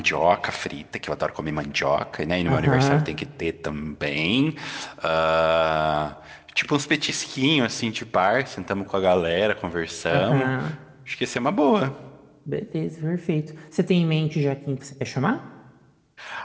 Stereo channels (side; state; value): both; identical; correlation 1.00